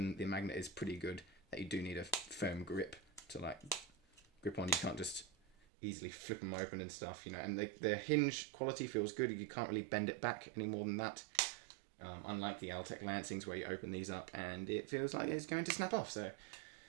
The magnet is pretty good. That you do need a firm grip to like grip on. You can't just easily flip them open and stuff, you know. And the hinge quality feels good. You can't really bend it back any more than that. Unlike the Altec Lansings where you open these up and it feels like it's going to snap off. So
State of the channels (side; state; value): left; drops out; at 5.6 s